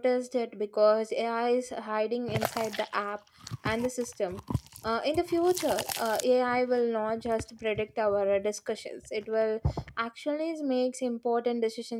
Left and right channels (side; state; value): both; identical; correlation 1.00